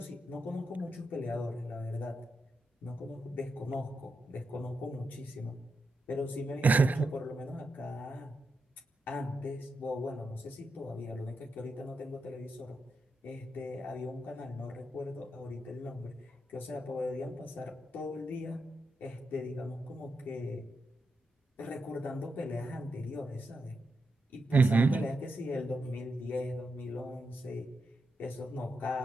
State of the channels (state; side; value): normal; both; correlation 0.85